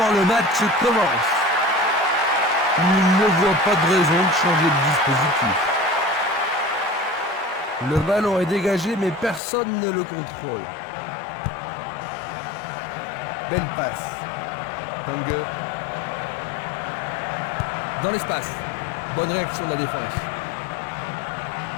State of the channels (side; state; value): right; drops out; at 9.4 s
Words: le match commence. Il ne voit pas de raison de changer de dispositif. Le ballon est dégagé, mais personne ne le contrôle. Belle passe. Tange. Dans l'espace. Bonne réaction de la défense.